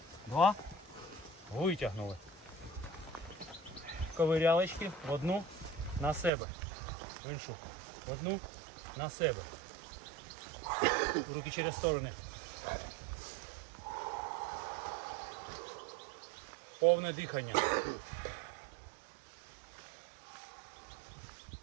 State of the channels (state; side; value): drops out; left; at 6.3 s